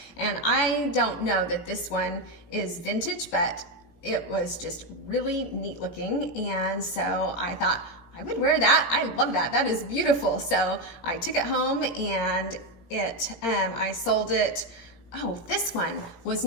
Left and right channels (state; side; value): late; right; 18 ms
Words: and I don't know that this one is vintage, but it was just really neat looking, and so I thought I would wear that. I love that. That is beautiful. So I took it home, and I sold it. Oh, this one was